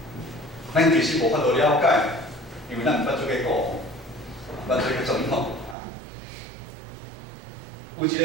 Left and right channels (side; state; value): left; drops out; at 5.8 s